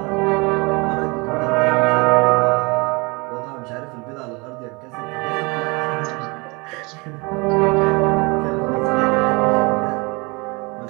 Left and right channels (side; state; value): left; quieter; 27.7 dB